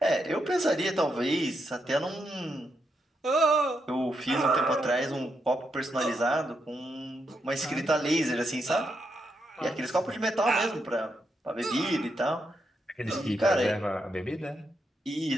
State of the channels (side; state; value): both; normal; correlation 0.82